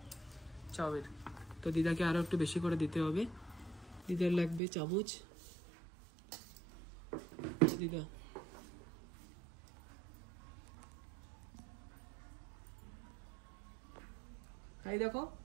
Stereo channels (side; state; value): left; drops out; at 4.6 s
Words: চাউমিন। তো দিদাকে আরো একটু বেশি করে দিতে হবে, দিদার লাগবে চামচ। দিদা তাই দেখো